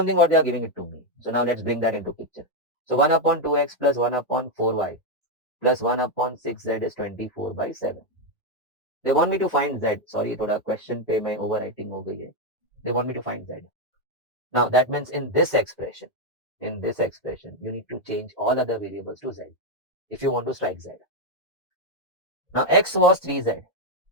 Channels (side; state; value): both; normal; correlation 0.03